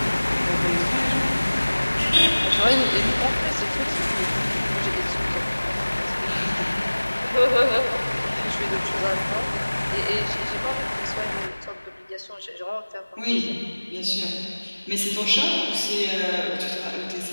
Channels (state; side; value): inverted; both; correlation -1.00